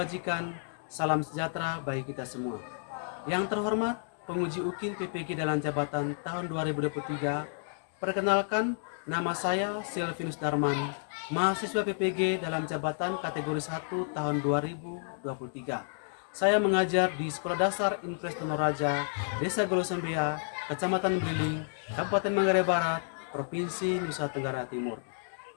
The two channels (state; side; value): silent; right; digital silence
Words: salam sejahtera bagi kita semua. Yang terhormat, penguji UKIN PPG dalam jabatan tahun 2023, perkenalkan nama saya Silvinus Darman, mahasiswa PPG dalam jabatan kategori 1 tahun 2023. Saya mengajar di Sekolah Dasar Impres Tonoraja, Desa Golosembea, Kecamatan Briling, Kabupaten Manggarai Barat, Provinsi Nusa Tenggara Timur.